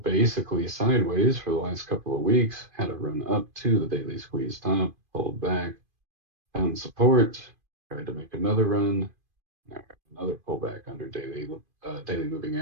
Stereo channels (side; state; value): left; late; 2.5 ms